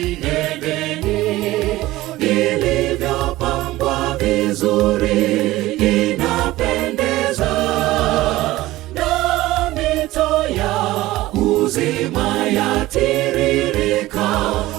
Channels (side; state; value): left; quieter; 17.3 dB